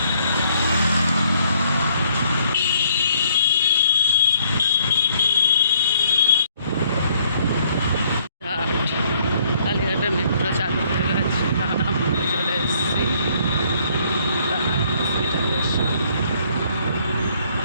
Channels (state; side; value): inverted; both; correlation -0.65